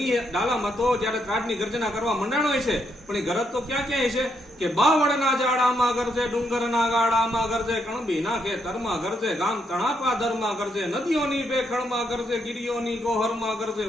ડાલા મથો જયારે કાઢની ગર્જના કરવા મંડાણો છે પણ એ ગરજ તો ક્યાં ક્યાંય છે કે બાવળના જાડામાં ગરજે ડુંગરના ગાડામાં ગરજે કણબીના ખેતરમાં ગરજે ગામ તણાપાદરમાં ગરજે નદીઓની બેખણમાં ગરજે ગીરીઓની ગોહરમાં ગરજે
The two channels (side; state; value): both; normal; correlation 0.77